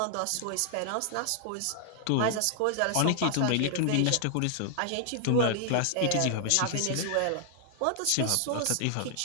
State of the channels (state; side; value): different; both; correlation 0.00